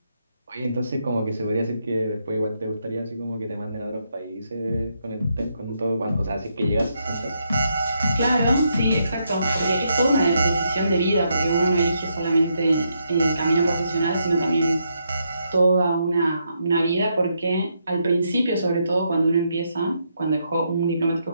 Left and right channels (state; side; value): inverted; both; correlation -0.79